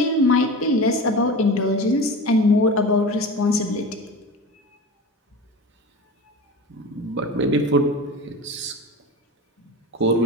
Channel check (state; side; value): normal; both; correlation 0.31